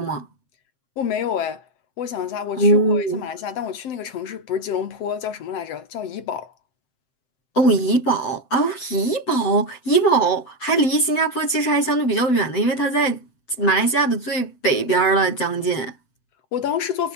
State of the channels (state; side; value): late; right; 7.8 ms